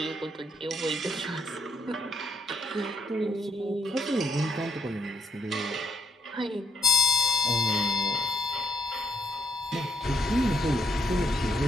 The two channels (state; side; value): normal; both; correlation 0.75